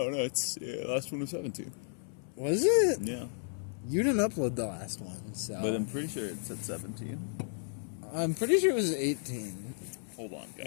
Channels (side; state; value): right; silent; 56 dB below the other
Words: it's last one was 17. Was it? Yeah. You didn't upload the last one, so. But I'm pretty sure it said 17. I'm pretty sure it was 18. Hold on,